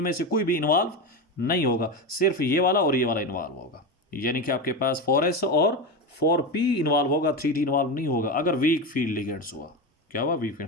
से कोई भी इन्वॉल्व नहीं होगा, सिर्फ ये वाला और ये वाला इन्वॉल्व होगा। यानी कि आपके पास 4s और 4p इन्वॉल्व होगा, 3d इन्वॉल्व नहीं होगा अगर वीक फील्ड लिगेंड्स हुआ। क्या हुआ, वीक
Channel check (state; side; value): normal; both; correlation 0.19